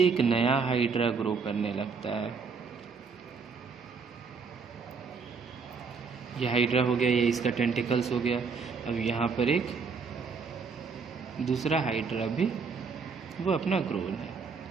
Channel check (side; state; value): left; quieter; 5.2 dB